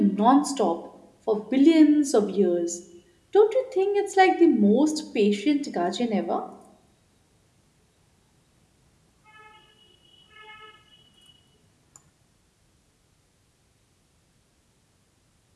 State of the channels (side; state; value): both; identical; correlation 1.00